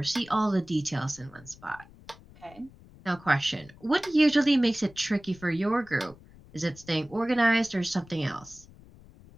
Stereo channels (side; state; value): left; noise; rumble, 23 dB below the sound